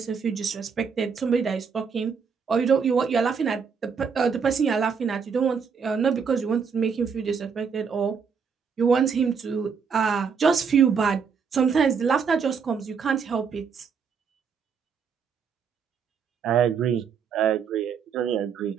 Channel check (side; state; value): left; quieter; 6.2 dB